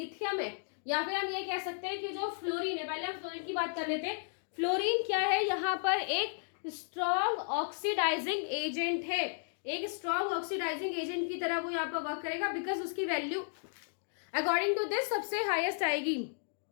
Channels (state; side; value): silent; right; digital silence